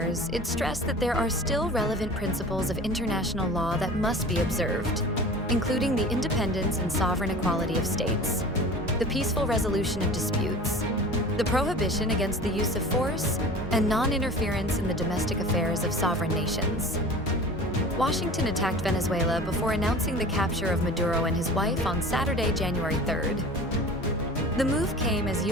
it stressed that there are still relevant principles of international law that must be observed, including the independence and sovereign equality of states, the peaceful resolution of disputes, the prohibition against the use of force, and non-interference in the domestic affairs of sovereign nations. Washington attacked Venezuela before announcing the capture of Maduro and his wife on Saturday, January 3rd. The move came as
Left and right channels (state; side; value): normal; both; correlation 0.39